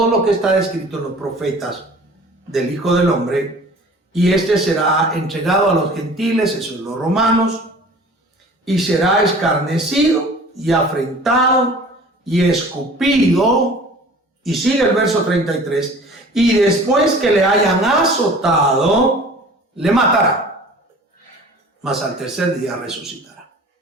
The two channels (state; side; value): normal; both; correlation 0.45